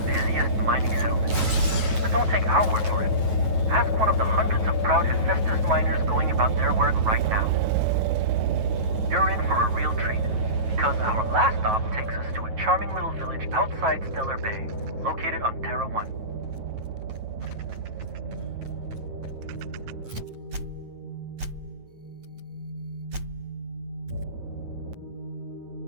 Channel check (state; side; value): late; left; 9.2 ms